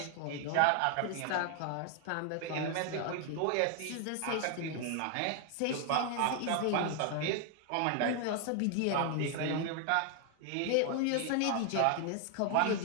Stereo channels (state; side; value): different; both; correlation 0.00